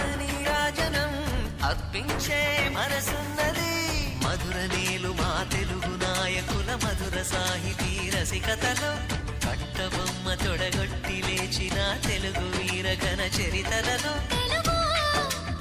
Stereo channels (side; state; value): both; identical; correlation 1.00